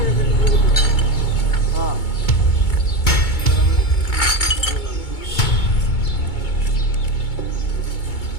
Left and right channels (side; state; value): right; late; 2.2 ms